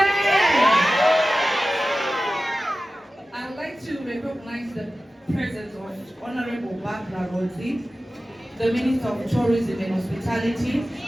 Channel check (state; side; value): normal; both; correlation 0.95